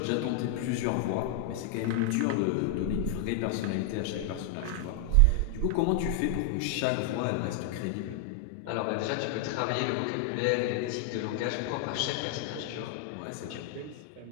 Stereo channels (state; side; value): different; both; correlation 0.00